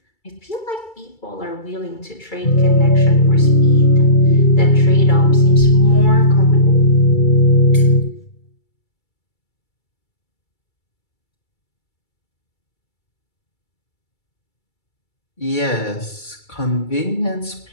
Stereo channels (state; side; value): late; right; 2.3 ms